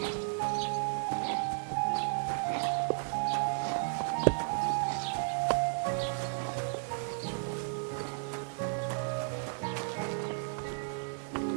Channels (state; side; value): silent; left; digital silence